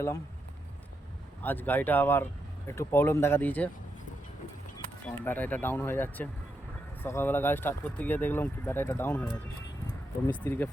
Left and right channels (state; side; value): normal; both; correlation 0.83